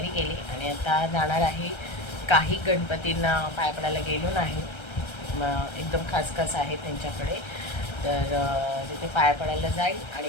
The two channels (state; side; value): late; right; 1.3 ms